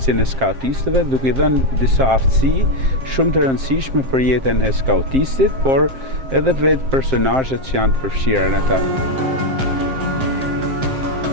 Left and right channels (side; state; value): left; late; 7.6 ms